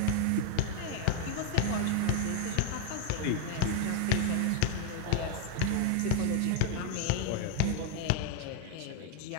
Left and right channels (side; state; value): both; different; correlation -0.01